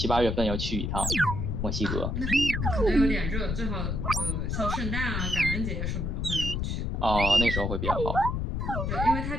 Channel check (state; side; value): noise; left; rumble, 1 dB below the sound